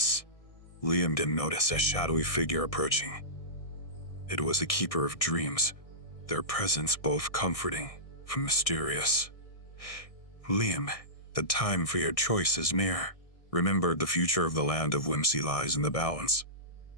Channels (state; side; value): late; right; 1.6 ms